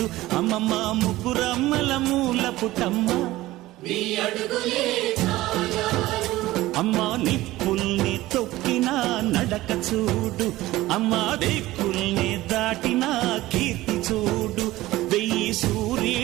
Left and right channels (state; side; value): quieter; left; 17.2 dB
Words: అమ్మమ్మ ముగ్గురమ్మల మూల పుటమ్మ అమ్మా నిప్పుల్ని తొక్కిన నడక చూడు, అమ్మా దిక్కుల్ని దాటిన కీర్తి చూడు, 1000